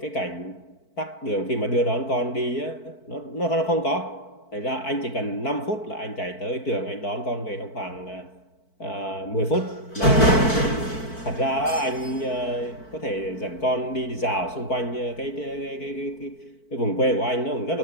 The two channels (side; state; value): right; late; 4.5 ms